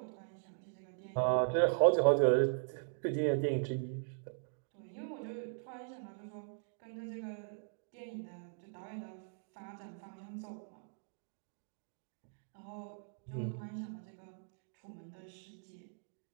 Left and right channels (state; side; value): silent; left; digital silence